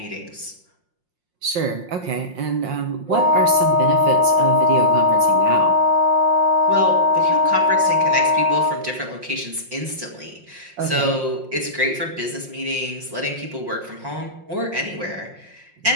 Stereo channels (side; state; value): left; late; 5.6 ms